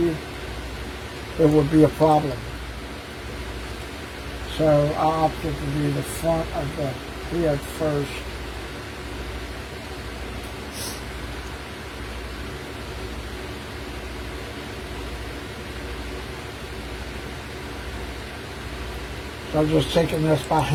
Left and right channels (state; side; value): identical; both; correlation 1.00